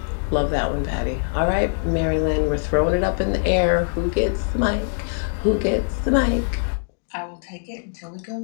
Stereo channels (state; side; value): silent; right; digital silence